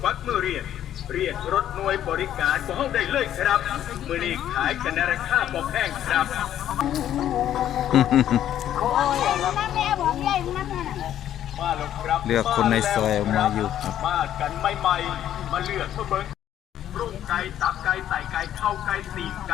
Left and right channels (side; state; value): right; quieter; 11.2 dB